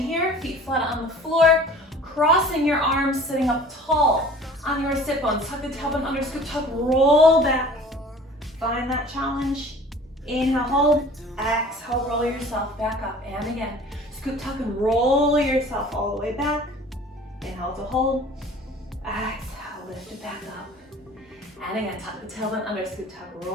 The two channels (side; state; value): both; normal; correlation 0.46